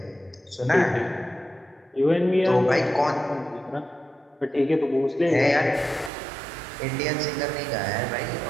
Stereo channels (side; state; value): left; drops out; at 6.1 s